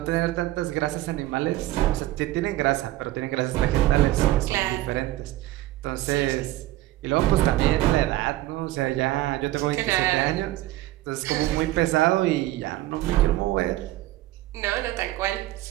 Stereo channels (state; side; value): quieter; left; 16.2 dB